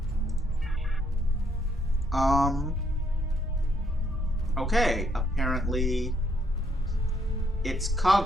Okay, apparently it's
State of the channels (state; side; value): normal; both; correlation 0.72